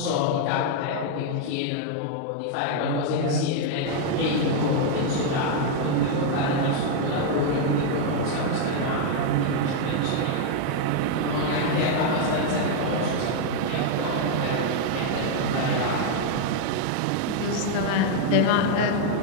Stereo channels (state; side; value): different; both; correlation 0.00